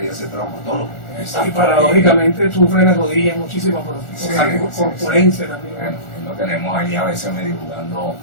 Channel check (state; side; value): late; right; 1.4 ms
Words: ser traumatólogo. Y paradójicamente sufre las rodillas muchísimo por Sí, corpulencia también. Bueno, lo tenemos ahí a veces medio jugando